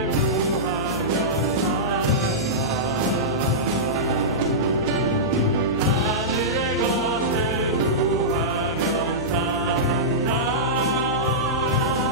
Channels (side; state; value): left; noise; hum, 13 dB below the sound